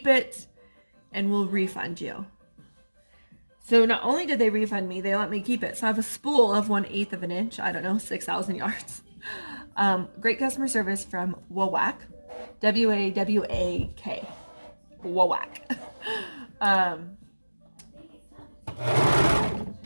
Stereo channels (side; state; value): both; inverted; correlation -1.00